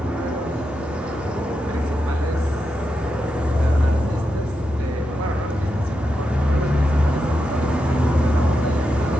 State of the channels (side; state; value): both; normal; correlation 0.87